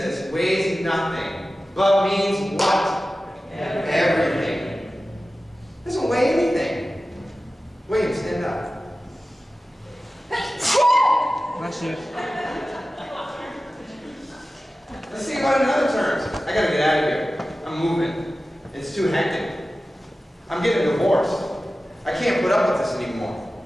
weighs nothing, but means what? Everything. Doesn't weigh anything. William, stand up. Bless you. Let's think about it in other terms. I gotta get out of here. I'm moving. It's too hectic. I'm getting divorced. I can't put up with this anymore.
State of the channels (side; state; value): both; normal; correlation 0.95